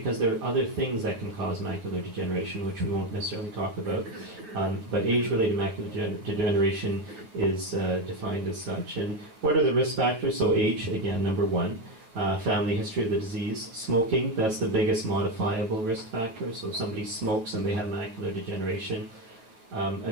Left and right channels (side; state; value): left; late; 9.1 ms